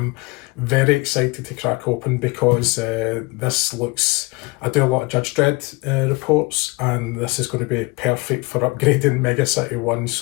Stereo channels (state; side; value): quieter; right; 25.8 dB